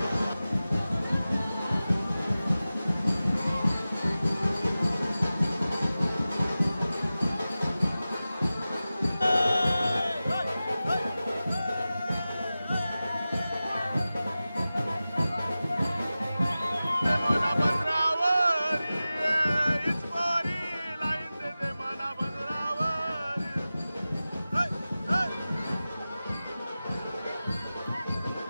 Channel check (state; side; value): inverted; both; correlation -0.95